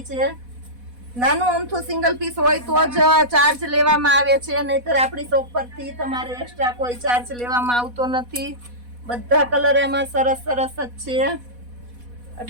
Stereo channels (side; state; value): left; late; 4.1 ms